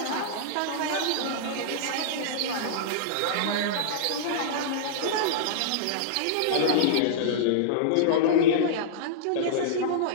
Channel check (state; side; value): different; both; correlation -0.02